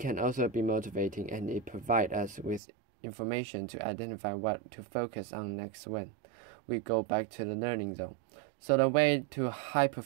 also be motivating, and it provides us with information to identify what to focus on next when we go back to the learning zone. So the way to high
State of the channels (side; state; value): left; drops out; at 2.6 s